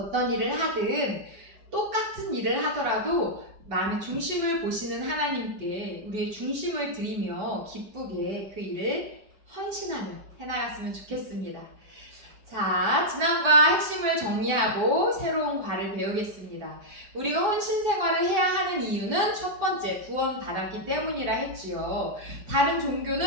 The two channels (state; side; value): late; left; 5.4 ms